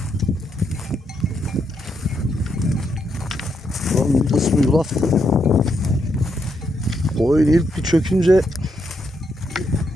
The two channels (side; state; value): both; normal; correlation 0.79